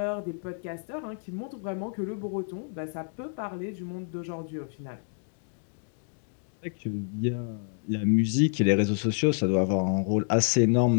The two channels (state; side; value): silent; right; digital silence